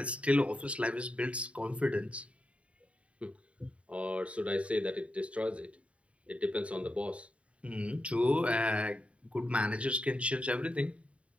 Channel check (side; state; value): left; late; 0.063 ms